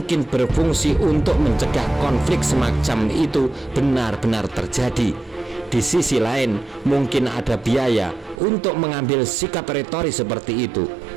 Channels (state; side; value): drops out; left; at 8.4 s